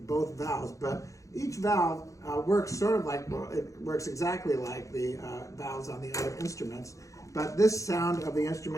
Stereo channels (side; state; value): right; late; 0.15 ms